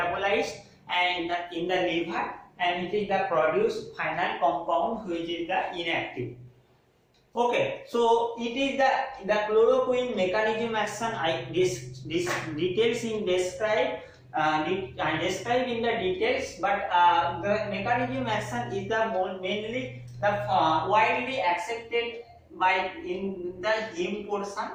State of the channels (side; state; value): both; identical; correlation 1.00